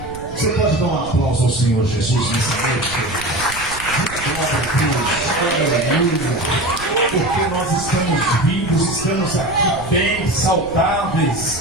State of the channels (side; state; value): right; noise; rumble, 14 dB below the sound